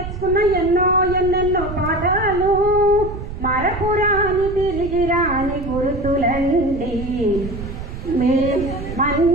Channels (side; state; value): right; noise; rumble, 9 dB below the sound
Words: ఎన్నెన్నో పాఠాలు, మరపురాని తిరిగి రాని గుర్తులండి.